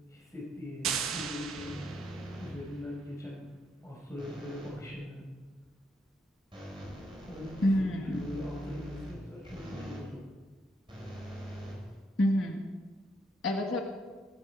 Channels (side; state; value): both; normal; correlation 0.77